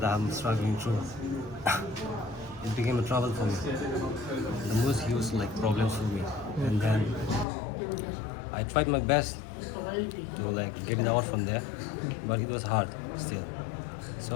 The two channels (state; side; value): drops out; right; at 7.5 s